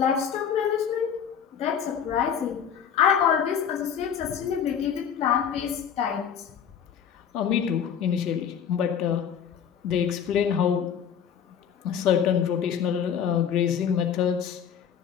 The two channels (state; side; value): quieter; right; 8.1 dB